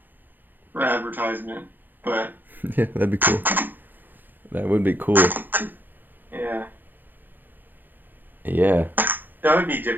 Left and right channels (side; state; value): left; late; 0.089 ms